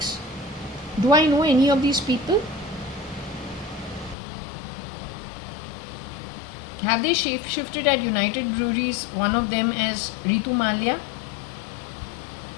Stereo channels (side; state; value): right; drops out; at 4.2 s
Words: Do I know any of these people? Have they shifted at United Breweries, one of them as Ritu Malia?